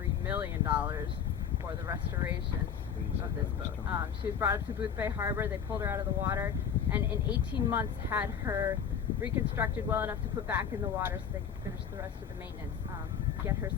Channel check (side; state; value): right; quieter; 7.7 dB